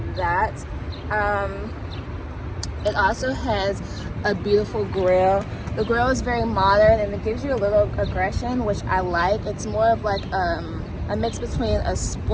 that. It also has a beautiful grille. The grille is very modern and it gives you a little aggression, which I like. It's more of like a mix between a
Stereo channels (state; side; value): identical; both; correlation 1.00